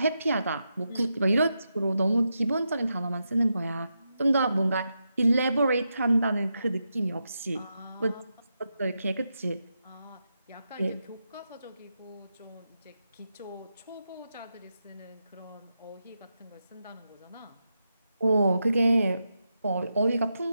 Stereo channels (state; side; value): inverted; both; correlation -0.86